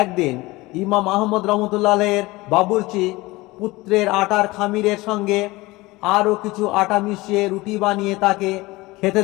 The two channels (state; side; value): quieter; right; 21.1 dB